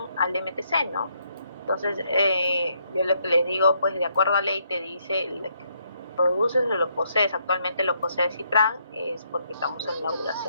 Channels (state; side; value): inverted; both; correlation -0.73